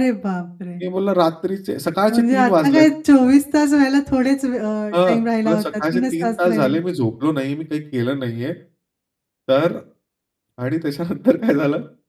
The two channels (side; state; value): both; identical; correlation 1.00